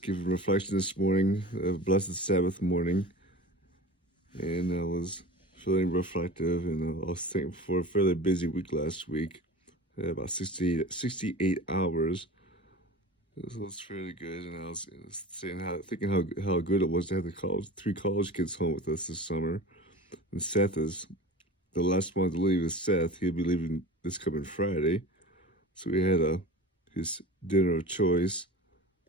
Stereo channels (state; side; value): normal; both; correlation 0.36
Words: a reflection this morning, a blessed Sabbath morning, and I was feeling reflective, and I was thankful for a fairly busy week last week. I had about 68 hours. So it was fairly good, and I was thinking how good it was to have three college kids home with us this summer. And Seth is the last one to leave. Is Seth? He'll be leaving this coming Friday, so we had his dinner of choice,